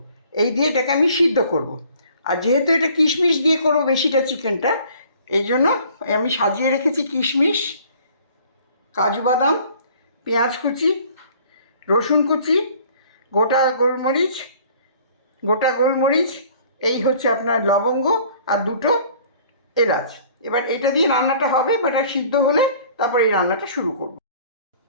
এই দিয়ে এটাকে আমি সিদ্ধ করব। আর যেহেতু এটা কিশমিশ দিয়ে করবো বেশিটা চিকেনটা, এই জন্য আমি সাজিয়ে রেখেছি কিশমিশ, কাজু বাদাম, পেঁয়াজ কুচি, রসুন কুচি, গোটা গোলমরিচ, এই হচ্ছে আপনার লবঙ্গ আর 2টো এলাচ। এবার এটা দিয়ে রান্নাটা হবে, বাট আর সিদ্ধ হলে তারপর এই রান্নাটা শুরু করব।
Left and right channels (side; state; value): both; inverted; correlation -0.53